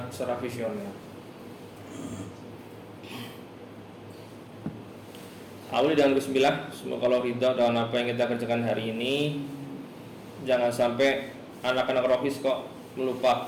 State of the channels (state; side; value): identical; both; correlation 1.00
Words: secara visioner. Awali dengan bismillah. Semoga Allah ridha dengan apa yang kita kerjakan hari ini. Jangan sampai anak-anak rohis kok